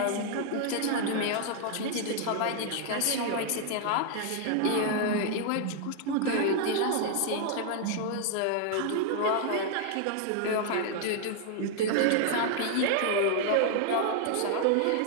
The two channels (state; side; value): different; both; correlation 0.00